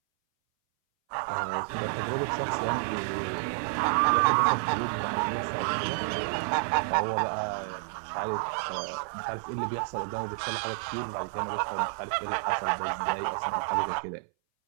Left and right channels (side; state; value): left; silent; 58 dB below the other